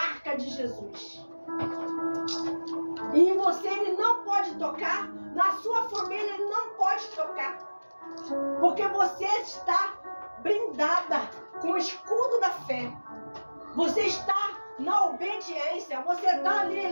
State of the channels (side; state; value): both; inverted; correlation -1.00